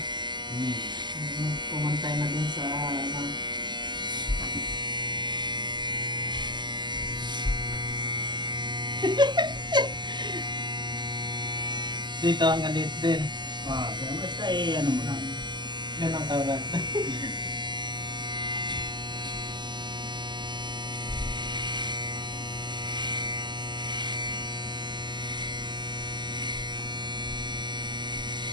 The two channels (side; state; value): left; late; 0.21 ms